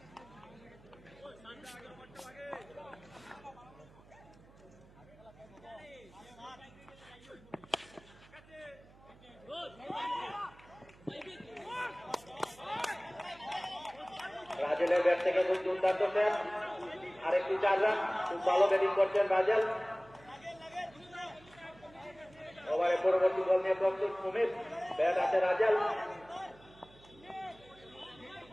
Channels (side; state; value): right; noise; hum, 24 dB below the sound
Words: রাজেলের ব্যাট থেকে খুব দুর্দান্ত শেষ, আরেকটি 4 রান। খুব ভালো ব্যাটিং করছেন রাজেল। ওভারে পরবর্তী বল নিয়ে প্রস্তুত সুমিত, ব্যাট হাতে রাজেল।